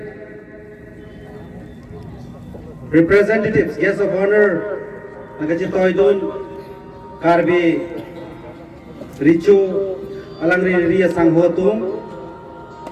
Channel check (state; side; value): identical; both; correlation 1.00